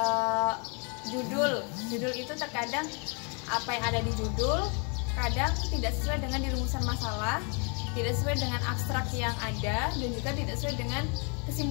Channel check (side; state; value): right; quieter; 36.6 dB